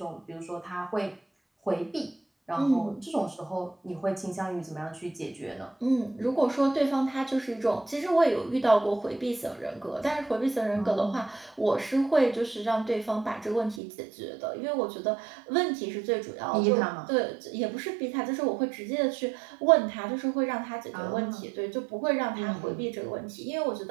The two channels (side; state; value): left; drops out; at 13.8 s